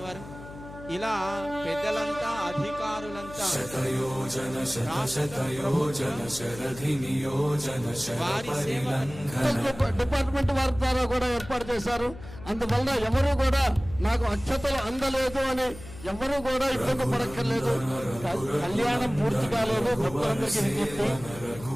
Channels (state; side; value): noise; left; hum, 15 dB below the sound